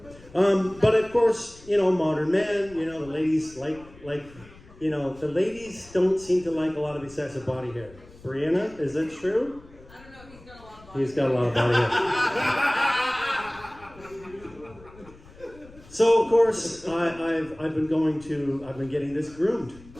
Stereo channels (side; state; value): left; noise; rumble, 22 dB below the sound